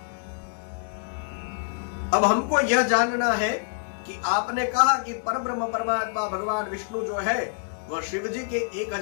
अब हमको यह जानना है कि आपने कहा कि परब्रह्म परमात्मा भगवान विष्णु जो है वह शिव जी के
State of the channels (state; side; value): silent; right; digital silence